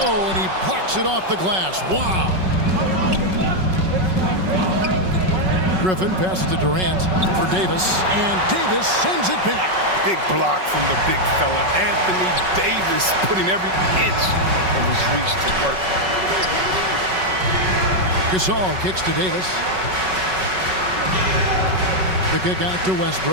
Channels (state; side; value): late; left; 5.4 ms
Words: Oh, and he blocks it off the glass. Wow. Griffin passes to Durant for Davis, and Davis sends it back. Big block from the big fella. Anthony Davis putting every inch of his reach to work. Gasol kicks to Davis. The kick out to